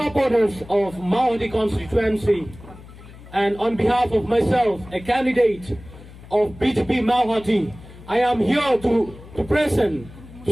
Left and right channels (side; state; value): left; noise; hum, 19 dB below the sound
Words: of Mawhati constituency and on behalf of myself a candidate of BJP Mawhati I am here to present to